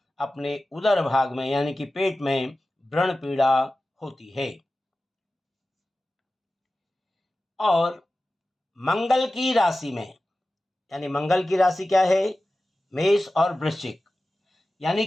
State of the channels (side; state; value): both; normal; correlation 0.95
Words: अपने उदर भाग में यानी कि पेट में व्रण पीड़ा होती है। और मंगल की राशि में, यानी मंगल की राशि क्या है, मेष और वृश्चिक, यानी